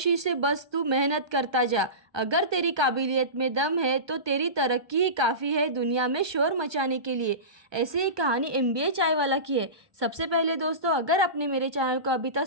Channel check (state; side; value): late; left; 1.2 ms